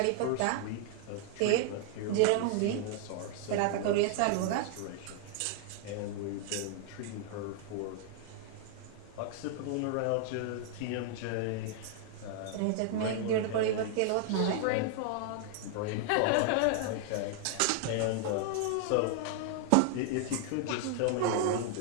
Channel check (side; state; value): both; different; correlation 0.00